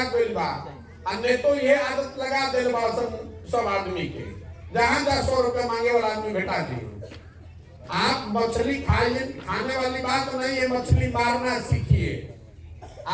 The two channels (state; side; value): identical; both; correlation 1.00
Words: गई बा। अन्य तो ये आदत लगा दिल बा सब आदमी के, जहां 100 रुपया मांगे वाला आदमी बेटा दी। आप मछली खाने वाली बात नहीं है, मछली मारना सीखिए।